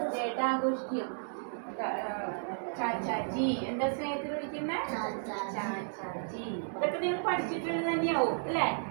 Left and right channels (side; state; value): left; silent; digital silence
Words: ഡേ ആയിട്ട് ആഘോഷിക്കും. ചാച്ചാജി എന്താ സ്നേഹത്തിൽ വിളിക്കുന്നത്? ചാച്ചാജി. ഇതൊക്കെ നിങ്ങൾ പഠിച്ചിട്ടുള്ളത് തന്നെയാവും അല്ലേ?